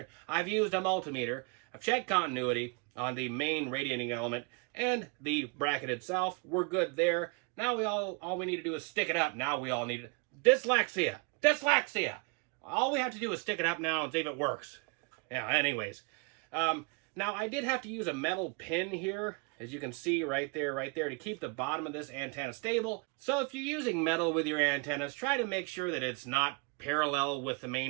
I've used a multimeter. I've checked continuity on the main radiating element and the bracket itself. We're good there. Now all we need to do is stick it up. Now we all need dyslexia. Dyslexia! All we have to do is stick it up now and see if it works. Yeah, anyways. Now, I did have to use a metal pin here, as you can see right there, to keep the bottom of this antenna stable. So if you're using metal with your antennas, try to make sure that it's not parallel with the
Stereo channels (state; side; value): quieter; left; 31.4 dB